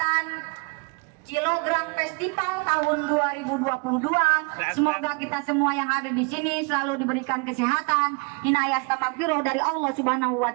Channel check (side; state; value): left; quieter; 33.5 dB